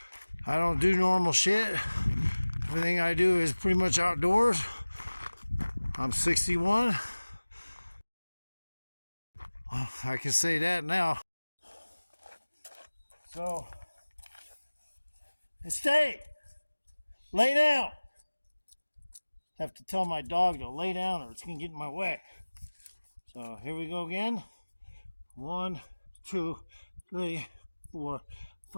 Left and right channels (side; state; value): both; inverted; correlation -1.00